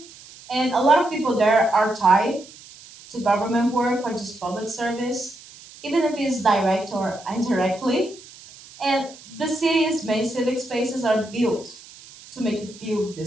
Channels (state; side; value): noise; right; hiss, 20 dB below the sound